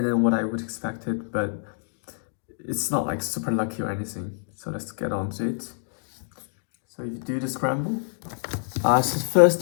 than what I would expected, but it's not like super lucky or anything. So let's get on to it. So if you do the scramble, so the first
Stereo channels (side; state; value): right; silent; digital silence